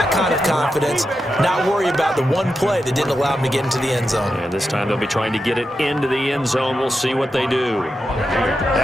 kind of confidence. Not worry about the one play that didn't allow them to get into the end zone. And this time they'll be trying to get it into the end zone. We'll see what they do.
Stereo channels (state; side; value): normal; both; correlation 0.88